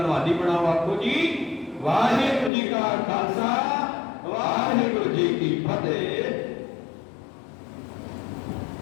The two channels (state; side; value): drops out; right; at 2.5 s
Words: बनाओ। आखो जी वाहिगुरू जी का खालसा वाहिगुरू जी की फतेह।